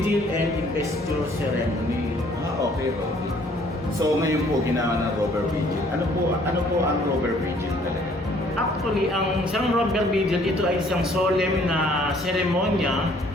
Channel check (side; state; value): both; normal; correlation 0.60